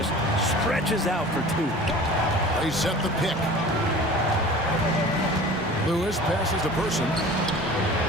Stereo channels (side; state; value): both; normal; correlation 0.41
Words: stretches out for 2. They set the pick. Lewis passes to Person.